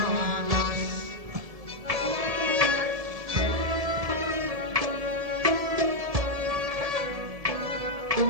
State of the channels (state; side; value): late; left; 1.7 ms